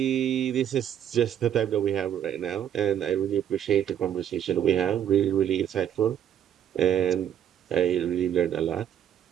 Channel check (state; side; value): quieter; left; 9.9 dB